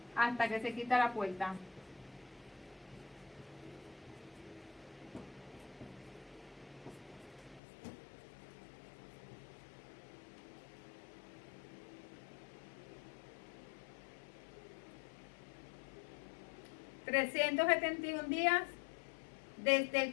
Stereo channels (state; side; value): drops out; right; at 7.6 s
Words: hasta que se quita la puerta. $371 días desde